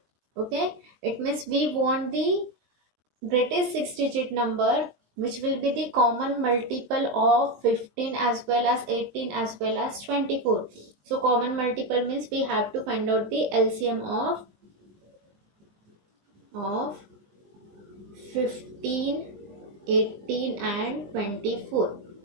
Okay, it means we want the greatest 6-digit number which will be the common multiple of 15 as well as 18 as well as 24. So common multiple means we have to find out the LCM of 15, 18 and 24.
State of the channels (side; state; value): left; late; 20 ms